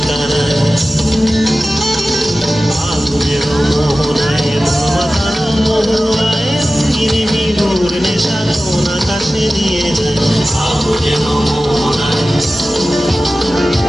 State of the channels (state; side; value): normal; both; correlation 0.95